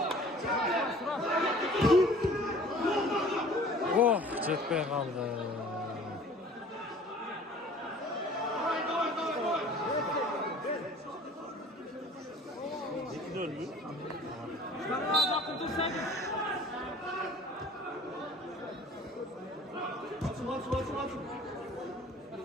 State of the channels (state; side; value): normal; both; correlation 0.48